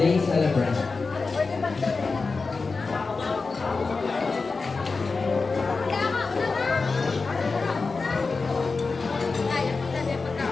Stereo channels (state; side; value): quieter; right; 4.2 dB